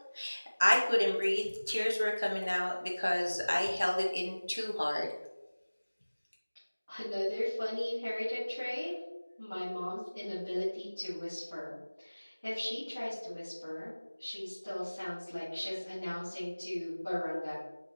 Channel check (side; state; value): both; inverted; correlation -1.00